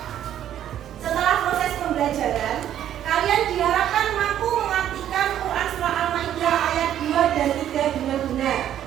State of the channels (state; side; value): quieter; left; 11.0 dB